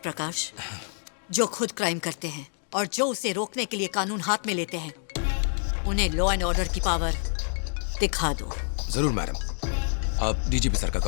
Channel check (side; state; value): right; silent; 56 dB below the other